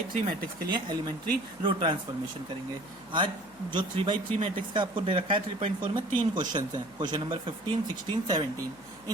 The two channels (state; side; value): noise; left; hum, 27 dB below the sound